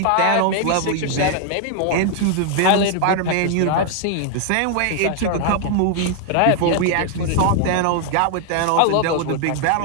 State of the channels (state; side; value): different; both; correlation 0.00